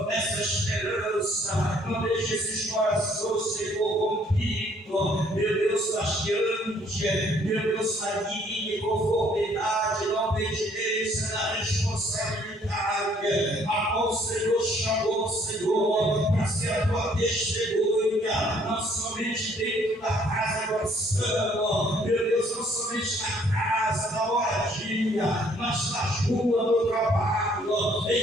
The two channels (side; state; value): both; normal; correlation 0.63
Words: essa esperança, não deixe esses corações, Senhor, rompidos, meu Deus, taxeante, meu Deus, na linha, conformidade, na obediência, na responsabilidade, a qual o Senhor chamou, Senhor, para ser a tua testemunha, não somente dentro da casa do oração, meu Deus, não somente na casa, na moradia, mas nas ruas do trabalho,